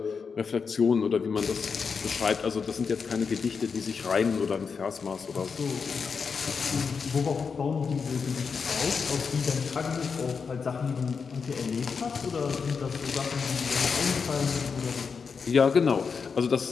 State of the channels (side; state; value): right; quieter; 5.6 dB